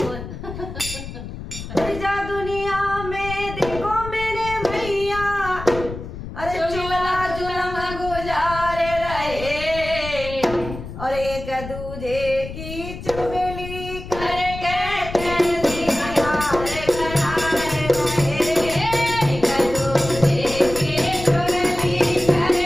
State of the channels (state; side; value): noise; left; rumble, 10 dB below the sound